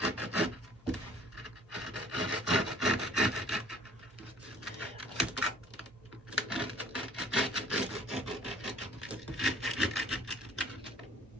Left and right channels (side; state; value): both; normal; correlation 0.54